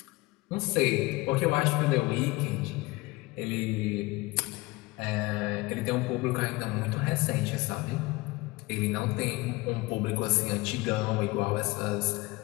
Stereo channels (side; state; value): right; quieter; 22.3 dB